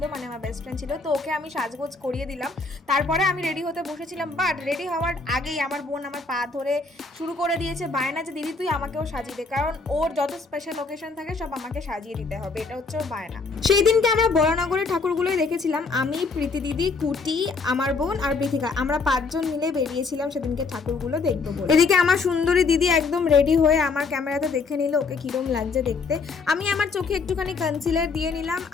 মানে আমার বেস্ট ফ্রেন্ড ছিল, তো ওকে আমি সাজগোজ করিয়ে দিলাম। তারপরে আমি রেডি হতে বসেছিলাম, বাট রেডি হওয়ার আগেই আমার বোন আমার পা ধরে শুরু করে দিয়েছে বায়না যে দিদি তুই আমাকেও সাজিয়ে দে, কারণ ওর যত স্পেশাল লোকেশন থাকে সব আমাকে সাজিয়ে দিতে হবে, এটা হচ্ছে ওর বায়না। সেই দিনকে আমরা বরানগরের ঠাকুরগুলোই দেখেছিলাম, আমি, প্রীতি দিদি, কুটি, আমার বোন আর বৃথিকা, আমরা 5 জন মিলে বেরিয়েছিলাম সেদিনকে ঠাকুরগুলো দেখবো বলে। এদিকে আমার সুন্দরী দিদি একদম রেডি হয়ে আমার ক্যামেরাতে দেখে নিল ওকে কিরম লাগছে দেখতে। আমি আমার চোখে একটুখানি কনসিলার দিয়ে নিলাম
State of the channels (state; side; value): quieter; right; 4.3 dB